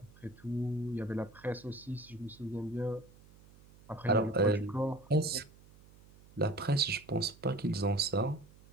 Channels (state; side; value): noise; right; hum, 24 dB below the sound